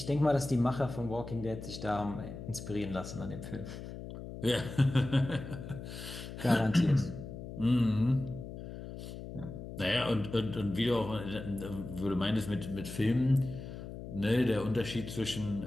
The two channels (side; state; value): left; noise; hum, 10 dB below the sound